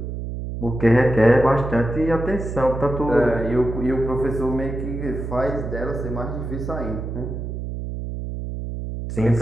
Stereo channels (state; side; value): noise; right; hum, 6 dB below the sound